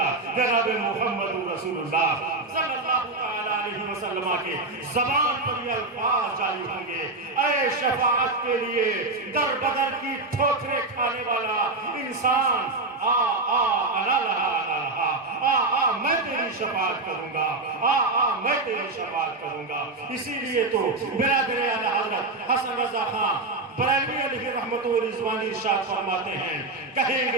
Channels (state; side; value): quieter; left; 3.2 dB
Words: جناب محمد رسول اللہ صلی اللہ علیہ وسلم کے زبان پر یہ الفاظ جاری ہوں گے، اے شفاعت کے لیے در بدر کی ٹھوکریں کھانے والا انسان، آ آ انا لہا انا لہا، آ میں تیری شفاعت کروں گا، آ میں تیری شفاعت کروں گا۔ اسی لیے تو برادر اعلی حضرت حسن رضا خان بریلوی علیہ رحمت و رضوان ارشاد فرماتے ہیں، کہیں